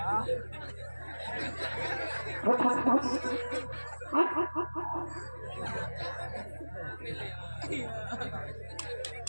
রুক রুক রুক।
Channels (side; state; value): both; inverted; correlation -1.00